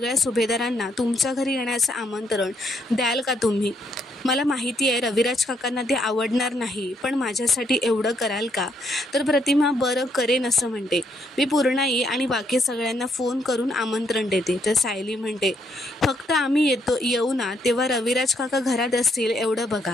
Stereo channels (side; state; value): both; normal; correlation 0.73